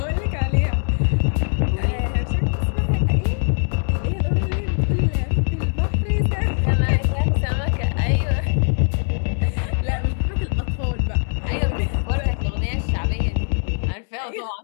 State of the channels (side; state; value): right; silent; 65 dB below the other